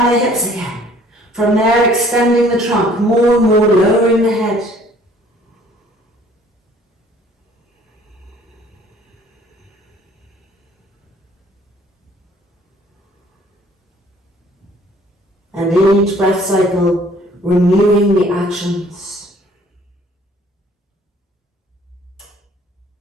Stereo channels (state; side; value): normal; both; correlation 0.57